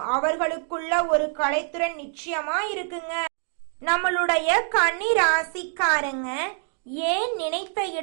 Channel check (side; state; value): left; silent; 56 dB below the other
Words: அவர்களுக்குள்ள ஒரு கலைத்திறன் நிச்சயமா இருக்குங்க. நம்மளுடைய கன்னி ராசிக்காரங்க ஏன் நினைத்த